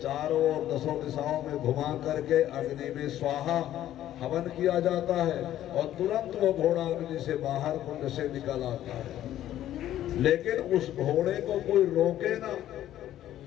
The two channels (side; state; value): right; quieter; 12.5 dB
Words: चारों ओर दसों दिशाओं में घुमा करके अग्नि में स्वाहा हवन किया जाता है और तुरंत वो घोड़ा अग्नि से बाहर कुंड से निकल आता है। लेकिन उस घोड़े को कोई रोके ना,